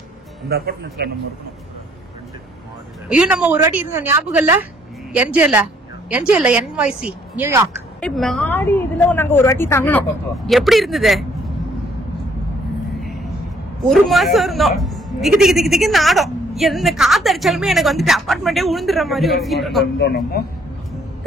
இந்த அபார்ட்மெண்ட்ல நம்ம இருக்கணும். ஐயோ நம்ம ஒரு வாட்டி இருந்தோம் ஞாபகம் இல்ல? என்ஜேல NYC நியூயார்க். மாடி இதுல நாங்க ஒரு வாட்டி தங்கணும். எப்படி இருந்தது? ஒரு மாசம் இருந்தோம். திக்கு திக்கு திக்கு திக்கு நாடும். எந்த காத்து அடிச்சாலுமே எனக்கு வந்துட்டு அபார்ட்மெண்டே உழுந்துற மாதிரி ஒரு ஃபீல் இருக்கும்.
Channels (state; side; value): normal; both; correlation 0.65